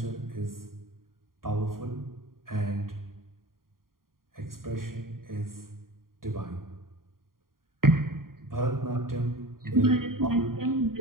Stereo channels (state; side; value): late; left; 0.91 ms